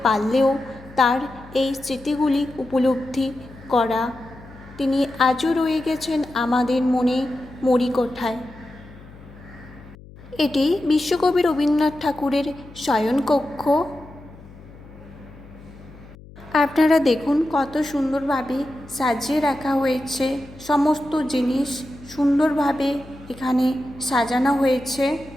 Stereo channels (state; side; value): noise; left; hum, 20 dB below the sound